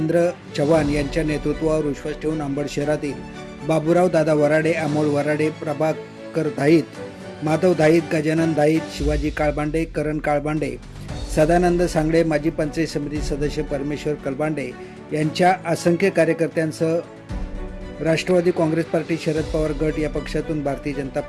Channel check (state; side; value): identical; both; correlation 1.00